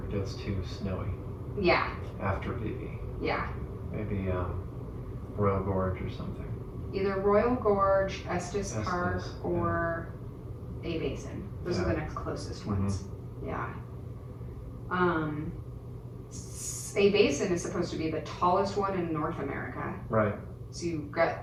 gets too snowy. Yeah. After BV. Yeah. Maybe Royal Gorge or something. Either Royal Gorge, Estes Park, or A Basin. Those are the next closest ones. Yeah. A Basin is supposed to be the tallest one in North America. Right. So you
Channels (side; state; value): both; identical; correlation 1.00